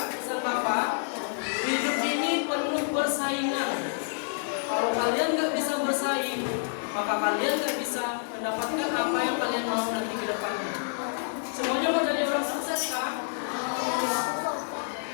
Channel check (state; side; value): silent; right; 59 dB below the other